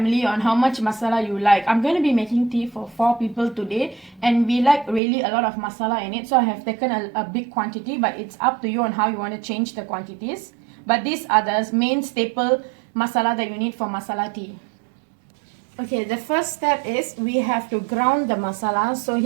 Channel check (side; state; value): left; drops out; at 5.0 s